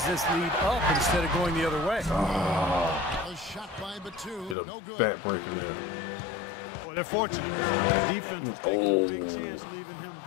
this lead up instead of going the other way. A shot by Batum, Get a no good. back breaker there. Well, they're fortunate. The defense is taking a big chance, leaving him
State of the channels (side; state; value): right; drops out; at 4.5 s